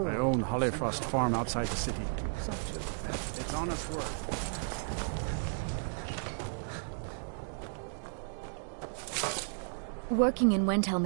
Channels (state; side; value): silent; left; digital silence